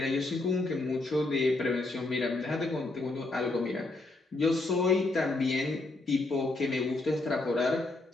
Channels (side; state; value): right; quieter; 3.0 dB